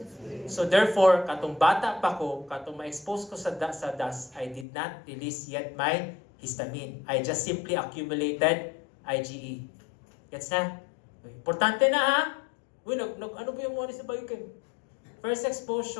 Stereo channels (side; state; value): right; drops out; at 4.7 s